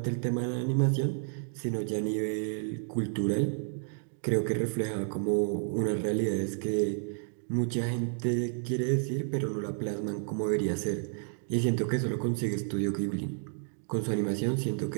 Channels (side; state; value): left; silent; digital silence